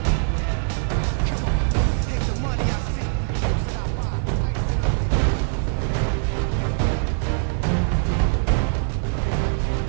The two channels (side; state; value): left; silent; digital silence